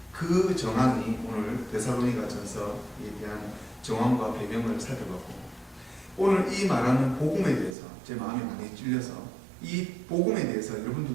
그 정황이 오늘 데살로니가 전서에 대한 정황과 배경을 살펴봤고, 오늘 이 말하는 복음에 대해서 제 마음이 많이 찔려서 이 복음에 대해서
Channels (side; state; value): left; drops out; at 7.8 s